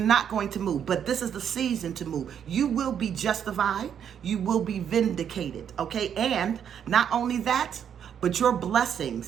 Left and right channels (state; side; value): quieter; left; 8.6 dB